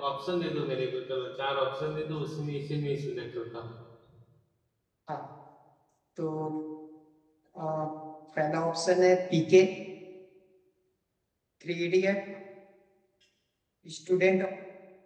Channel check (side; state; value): both; identical; correlation 1.00